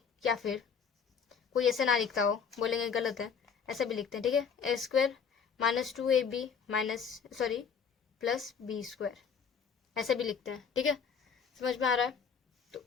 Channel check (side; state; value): right; quieter; 6.5 dB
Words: या फिर कोई ऐसे ना लिखता हो, बोलेंगे गलत है, ऐसे भी लिखते हैं, ठीक है, a² - 2ab - +b², ऐसे भी लिखते हैं, ठीक है। समझ में आ रहा है? तो